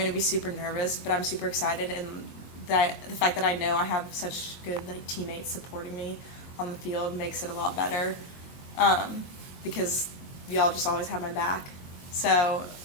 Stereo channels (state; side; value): late; right; 22 ms